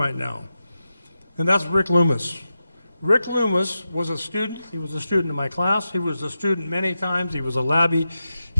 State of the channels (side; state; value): both; inverted; correlation -0.91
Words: now. And that's Rick Loomis. Rick Loomis was a student. He was a student in my class. He was a student many times. He was a labbie.